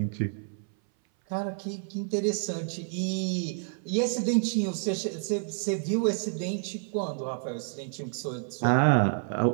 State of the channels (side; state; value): left; silent; 57 dB below the other